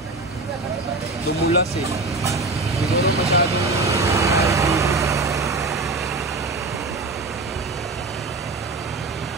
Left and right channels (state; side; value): quieter; left; 3.4 dB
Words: Dumulas eh. Siguro masyadong